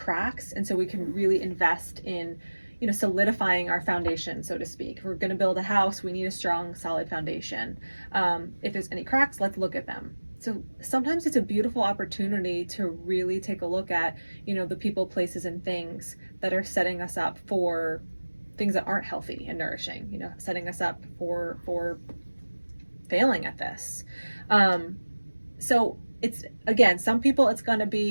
and so we can really invest in solidifying our foundation, so to speak. If we're going to build a house, we need a strong, solid foundation. If there's any cracks, let's look at them. So sometimes it's a beautiful opportunity to really take a look at the people, places, and things that are setting us up for things that aren't healthy and nourishing, setting us up for failing at this. So it's, again, some people it's going to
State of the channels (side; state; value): both; inverted; correlation -1.00